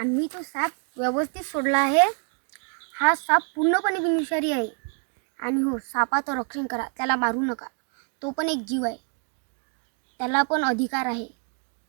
तो साप व्यवस्थित सोडला आहे. हा साप पूर्णपणे बिनविषारी आहे. आणि हो, सापाचं रक्षण करा. त्याला मारू नका. तो पण एक जीव आहे. त्याला पण अधिकार आहे.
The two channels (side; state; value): left; quieter; 40.0 dB